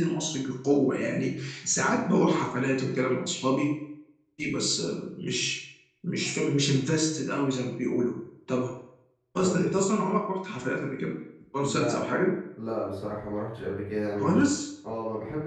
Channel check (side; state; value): both; identical; correlation 1.00